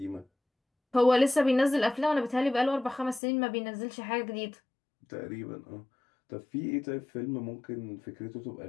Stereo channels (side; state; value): right; drops out; at 3.2 s